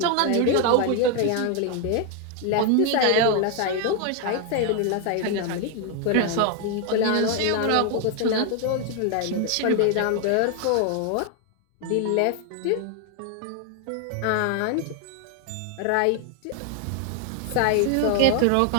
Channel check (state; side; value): different; both; correlation 0.00